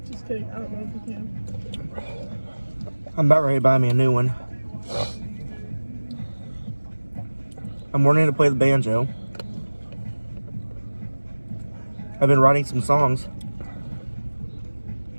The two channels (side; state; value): both; inverted; correlation -1.00